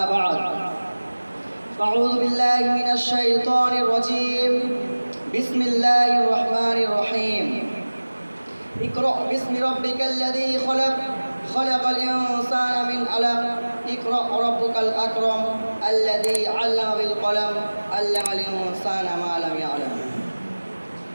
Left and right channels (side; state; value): both; inverted; correlation -1.00